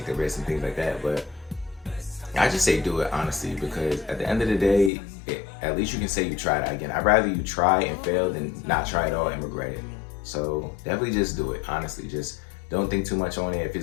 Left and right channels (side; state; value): right; drops out; at 4.9 s